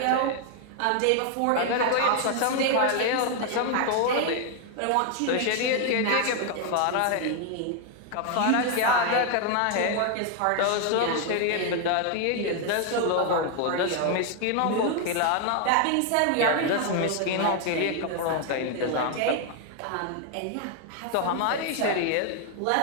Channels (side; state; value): both; different; correlation 0.01